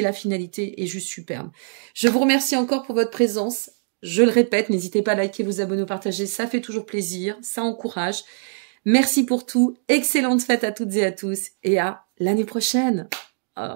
la finalité est juste superbe. Je vous remercie encore pour votre présence. Je le répète, n'hésitez pas à liker, vous abonner, partager, ça fait toujours plaisir, ça encourage. Merci pour tout, excellente fête à toutes et à tous et à l'année prochaine.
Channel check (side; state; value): left; silent; digital silence